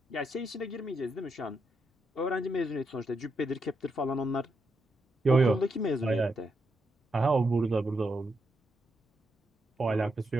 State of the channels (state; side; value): normal; both; correlation 0.82